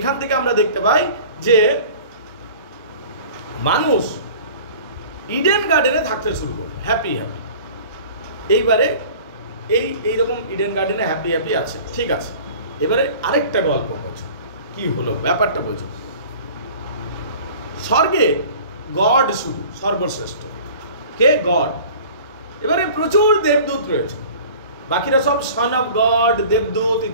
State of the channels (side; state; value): both; inverted; correlation -0.44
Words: থেকে আমরা দেখতে পাই যে মানুষ ইডেন গার্ডেনে থাকতে শুরু করলো, হ্যাপি হ্যাপি। এইবারে এইরকম ইডেন গার্ডেনে হ্যাপি হ্যাপি আছে, ঠিক আছে। এবারে আরেকটা গল্প বোঝো, কি হলো ব্যাপারটা বোঝো। স্বর্গে গড শুধু সর্বশ্রেষ্ঠ, কে? গড। এবারে প্রচুর দেবদূত রয়েছে, বাকিরা সব সন অফ গড, দেবদূত